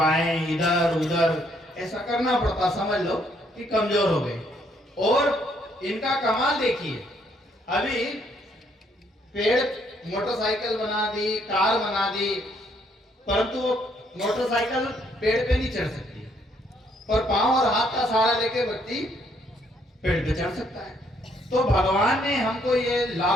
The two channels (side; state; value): both; normal; correlation 0.69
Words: इधर उधर ऐसा करना पड़ता, समझ लो कि कमजोर हो गए। और इनका कमाल देखिए, अभी पेड़ मोटरसाइकिल बना दी, कार बना दी, परंतु वो मोटरसाइकिल पेड़ पे नहीं चढ़ सकती, पर पांव और हाथ का सहारा लेके व्यक्ति पेड़ पे चढ़ सकता है। तो भगवान ने हमको ये